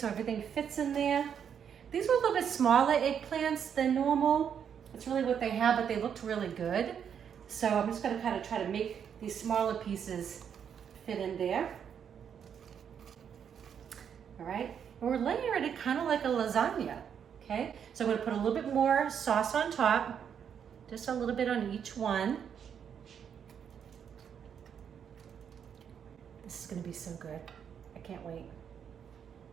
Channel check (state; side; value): quieter; left; 8.0 dB